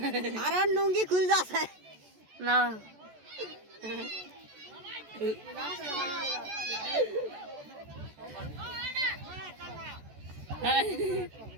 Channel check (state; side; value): late; left; 14 ms